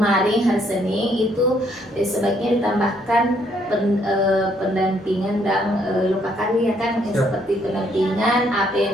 hari Senin itu sebaiknya ditambahkan pendampingan dan lokakarya kan, seperti pendampingan apa yang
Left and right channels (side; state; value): both; normal; correlation 0.69